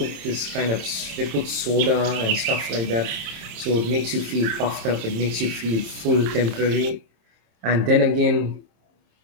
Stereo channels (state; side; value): late; left; 27 ms